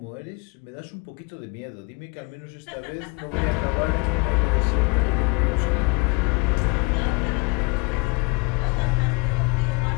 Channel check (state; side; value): quieter; right; 28.9 dB